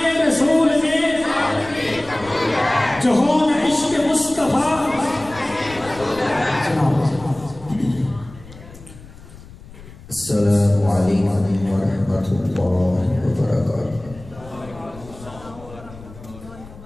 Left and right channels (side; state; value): left; noise; rumble, 18 dB below the sound